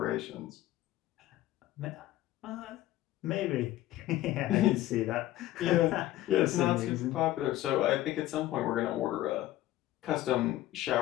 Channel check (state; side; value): quieter; right; 15.0 dB